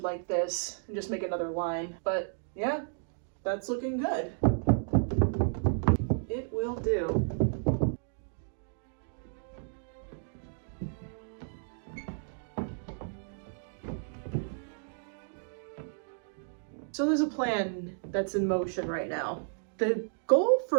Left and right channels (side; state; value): left; silent; digital silence